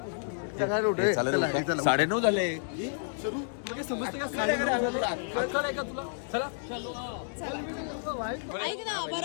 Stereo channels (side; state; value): right; silent; 57 dB below the other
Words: चल उठे. 9:30 झाले. ऐक ना,